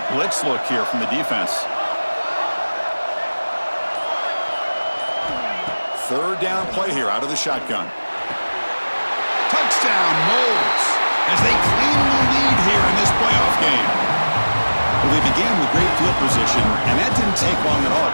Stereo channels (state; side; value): inverted; both; correlation -1.00